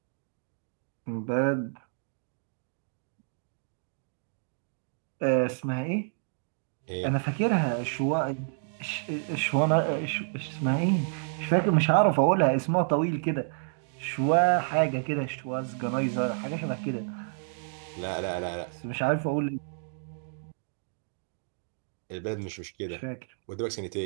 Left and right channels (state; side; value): silent; left; digital silence